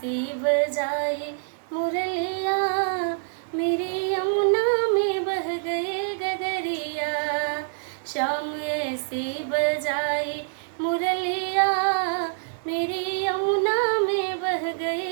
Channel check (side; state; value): left; silent; 61 dB below the other